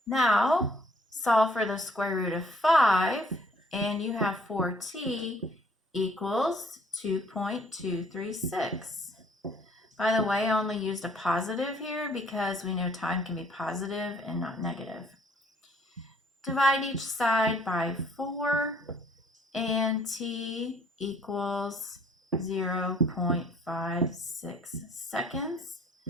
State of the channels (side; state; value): both; normal; correlation 0.60